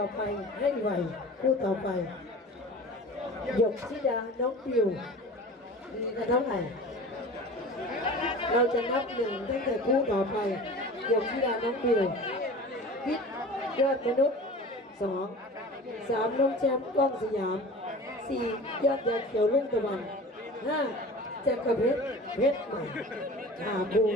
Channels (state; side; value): normal; both; correlation 0.38